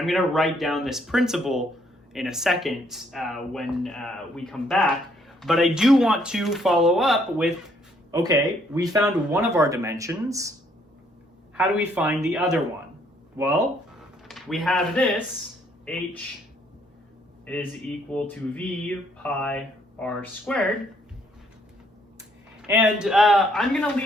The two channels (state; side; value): normal; both; correlation 0.67